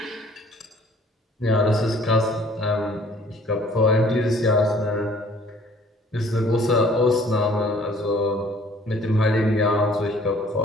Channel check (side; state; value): both; normal; correlation 0.56